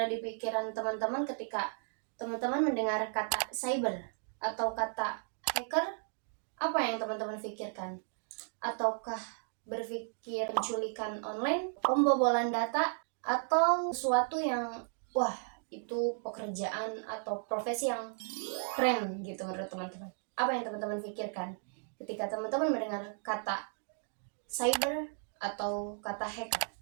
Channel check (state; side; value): silent; left; 55 dB below the other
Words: di pikiran teman-teman ketika teman-teman mendengar kata cyber atau kata hacker? Apa yang teman-teman pikirkan? Ataukah berpikir penculikan online, pembobolan data, atau sesuatu yang wah itu pekerjaan atau profesi yang keren gitu menurut teman-teman? Apa yang teman-teman pikirkan ketika teman-teman mendengar kata cyber atau kata hacker?